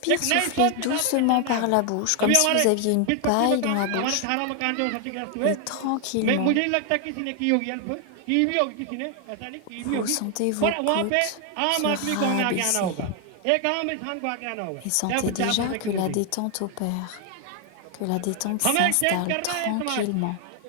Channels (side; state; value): both; different; correlation 0.01